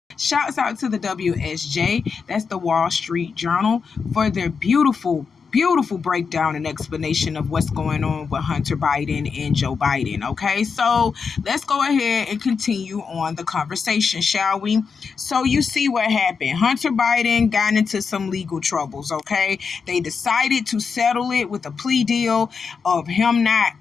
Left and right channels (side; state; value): right; quieter; 5.6 dB